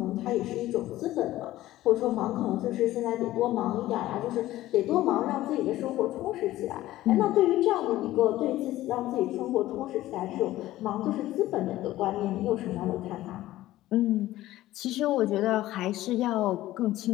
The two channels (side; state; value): right; quieter; 15.5 dB